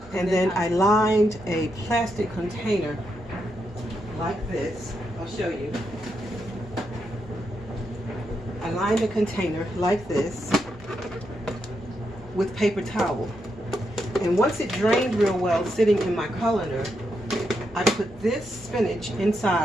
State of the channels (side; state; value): both; normal; correlation 0.82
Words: And then I lined a plastic container like this. I'll show you. I lined a container like this with paper towel. And once it drained real well, sitting in my colander, I put this spinach